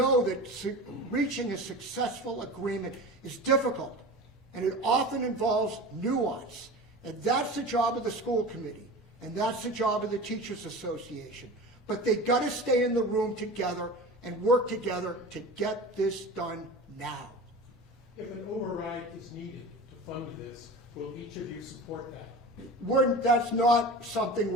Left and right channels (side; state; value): both; normal; correlation 0.33